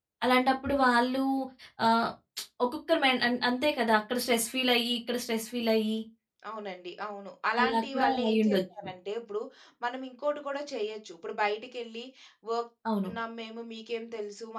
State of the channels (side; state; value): both; identical; correlation 1.00